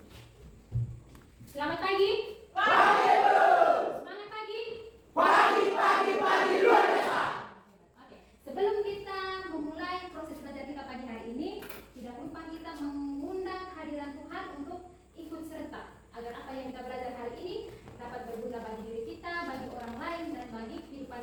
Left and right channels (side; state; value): both; identical; correlation 1.00